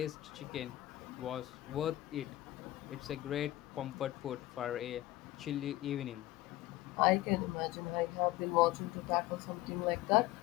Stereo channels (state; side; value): quieter; right; 16.4 dB